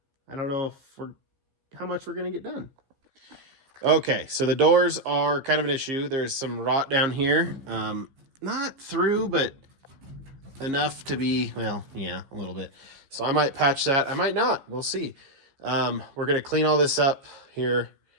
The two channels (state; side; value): late; left; 15 ms